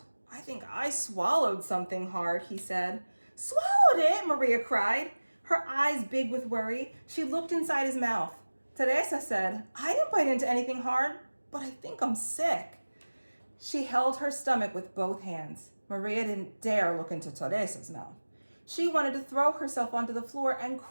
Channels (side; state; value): both; inverted; correlation -1.00